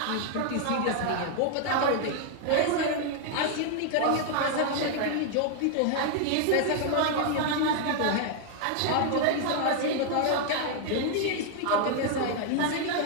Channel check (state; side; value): different; both; correlation 0.00